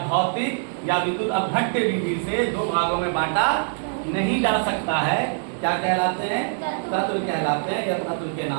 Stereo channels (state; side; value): silent; left; digital silence